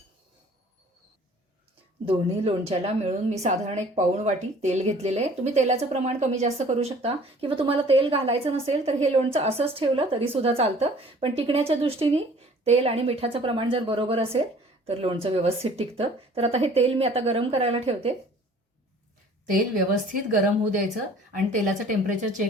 दोन्ही लोणच्याला मिळून मी साधारण 1 पाऊण वाटी तेल घेतलेलं आहे. तुम्ही तेलाचं प्रमाण कमी जास्त करू शकता किंवा तुम्हाला तेल घालायचं नसेल तर हे लोणचं असंच ठेवलं तरीसुद्धा चालतं. पण टिकण्याच्या दृष्टीने तेल आणि मिठाचं प्रमाण जर बरोबर असेल तर लोणचं व्यवस्थित टिकतं. तर आता हे तेल मी आता गरम करायला ठेवते. तेल व्यवस्थित गरम होऊ द्यायचं आणि तेलाचं टेम्परेचर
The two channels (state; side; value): normal; both; correlation 0.51